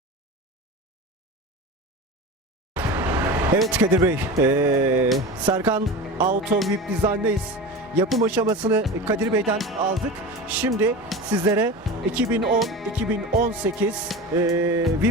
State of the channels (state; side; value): normal; both; correlation 0.29